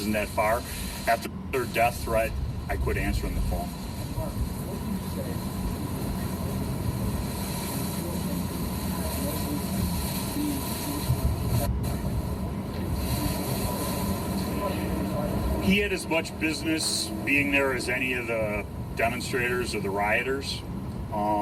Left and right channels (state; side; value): identical; both; correlation 1.00